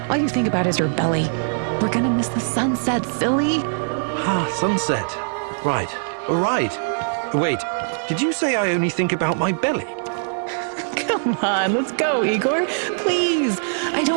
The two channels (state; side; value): silent; left; 64 dB below the other